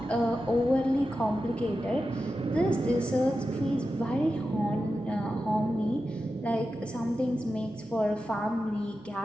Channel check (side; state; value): left; noise; hum, 27 dB below the sound